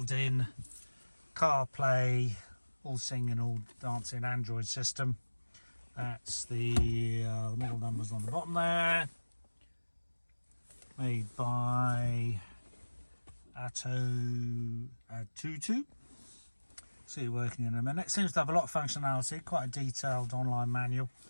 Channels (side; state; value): both; inverted; correlation -1.00